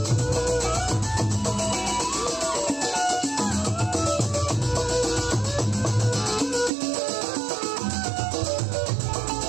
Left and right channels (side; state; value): left; drops out; at 6.7 s